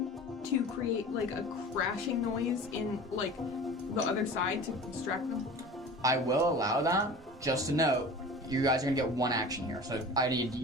to create like a crashing noise in like the other side to distract them? I will allow that. Just a note, you guys are gonna get one action here. So I need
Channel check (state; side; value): normal; both; correlation 0.38